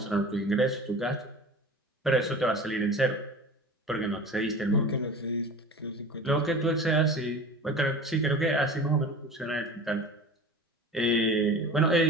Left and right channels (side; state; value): both; normal; correlation 0.37